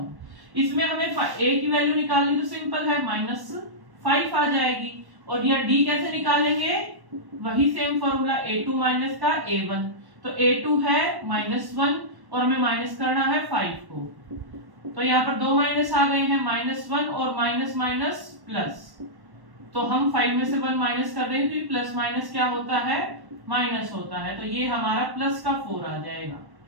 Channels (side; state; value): left; late; 1.1 ms